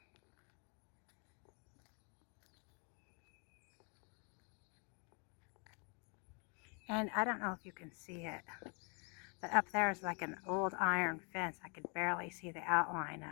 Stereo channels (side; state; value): right; quieter; 35.0 dB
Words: And I don't know if you can see it, But up there is like an old iron fence. I could barely see the outline